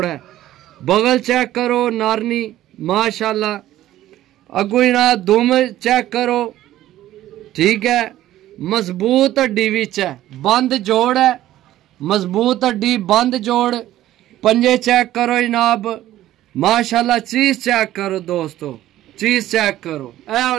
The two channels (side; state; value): left; quieter; 14.0 dB